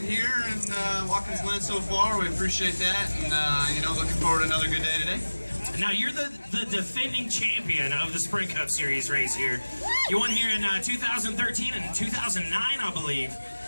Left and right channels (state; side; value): inverted; both; correlation -1.00